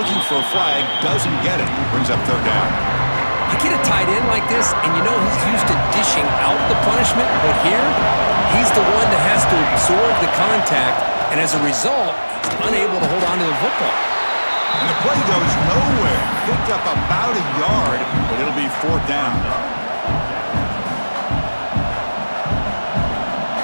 for a flag, doesn't get it. Brings up third down. You get a tight end like this, and you know he's used to dishing out the punishment, but here, he's the one that has to absorb the contact, and as a result, he's unable to hold on to the football. And the play goes nowhere. Picked up about a yard, but it'll be fourth down.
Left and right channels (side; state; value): both; inverted; correlation -1.00